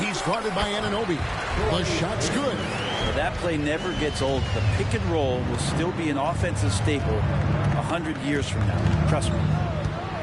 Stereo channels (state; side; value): identical; both; correlation 1.00